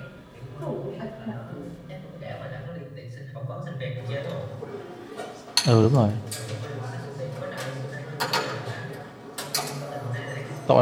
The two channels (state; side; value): identical; both; correlation 1.00